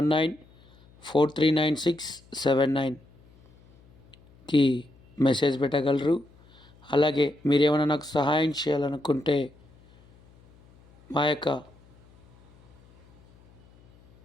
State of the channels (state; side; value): noise; left; hum, 28 dB below the sound